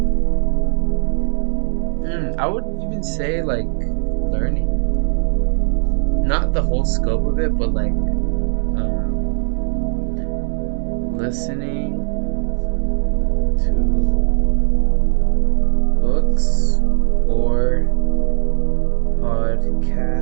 I would even say like learning. Not the whole scope of it, but like listening to books or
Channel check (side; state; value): left; silent; digital silence